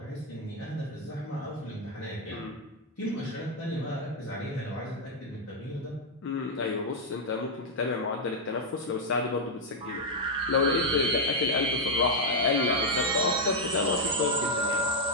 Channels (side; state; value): both; normal; correlation -0.01